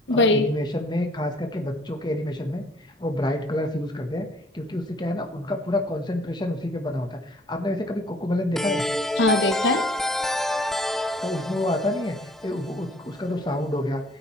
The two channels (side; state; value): both; normal; correlation 0.56